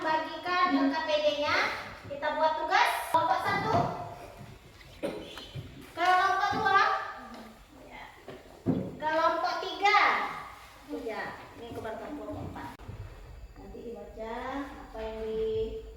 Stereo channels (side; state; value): both; identical; correlation 1.00